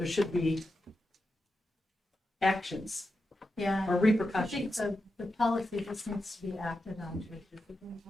should be actions Yeah. or I think repercussions. the policy just needs to be acted on to a discipline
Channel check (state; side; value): normal; both; correlation 0.89